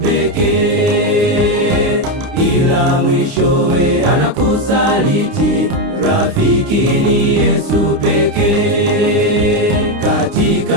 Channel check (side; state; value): left; late; 29 ms